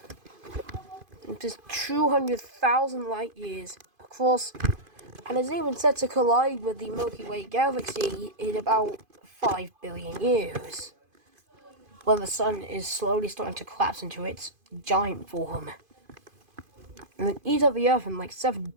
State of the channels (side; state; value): left; late; 2.5 ms